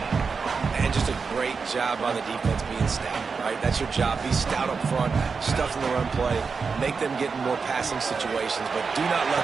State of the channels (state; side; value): quieter; left; 5.1 dB